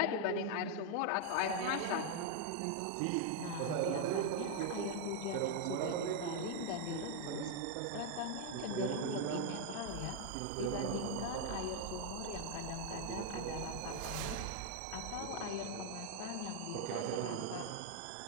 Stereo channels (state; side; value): different; both; correlation 0.00